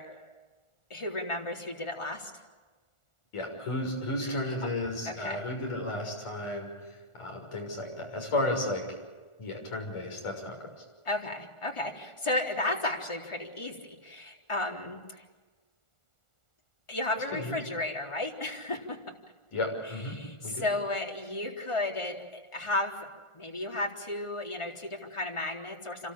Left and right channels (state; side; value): late; right; 1.4 ms